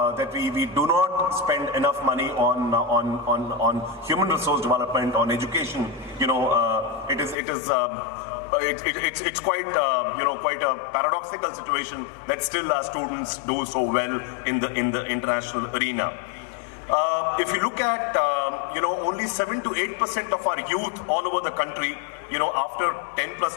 we do not spend enough money on human resource development, on education, it's quite quite a paradoxical situation that still our students do so well in the international arena. If you look at only 7 to 8% of our youth all over the country, after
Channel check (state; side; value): drops out; right; at 7.4 s